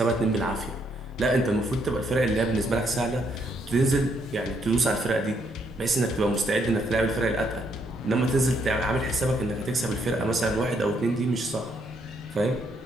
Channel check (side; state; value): both; normal; correlation 0.73